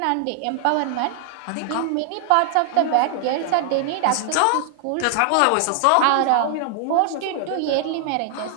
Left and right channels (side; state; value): both; different; correlation 0.00